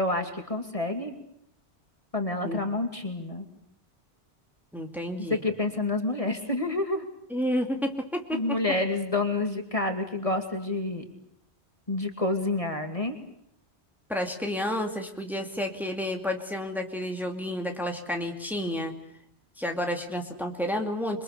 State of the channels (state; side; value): normal; both; correlation 0.15